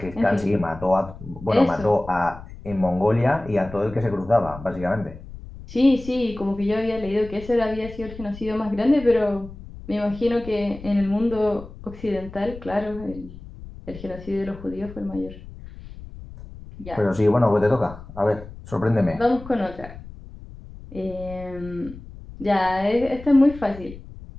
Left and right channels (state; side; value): noise; left; rumble, 15 dB below the sound